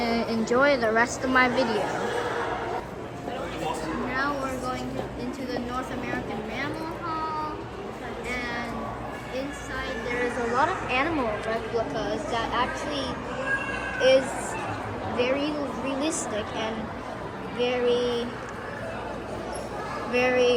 enjoy the rest of my video. Now we're going into the North American Mammal Hall, and inside there is a lot of animal replicas that actually is very realistic and very,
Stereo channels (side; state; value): both; identical; correlation 1.00